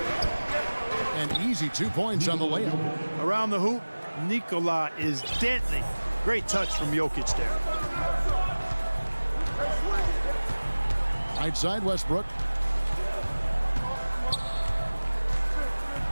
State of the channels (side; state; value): both; inverted; correlation -1.00